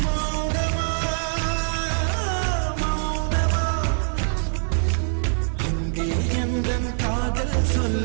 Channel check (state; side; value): silent; left; 63 dB below the other